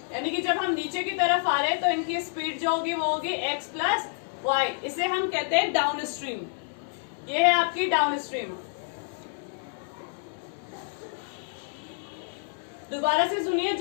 यानी कि जब हम नीचे की तरफ आ रहे हैं तो इनकी स्पीड जो होगी वो होगी x प्लस वाई. इसे हम कहते हैं डाउन स्ट्रीम. ये है आपकी डाउन स्ट्रीम. दोबारा से सुनिए.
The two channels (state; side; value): silent; right; digital silence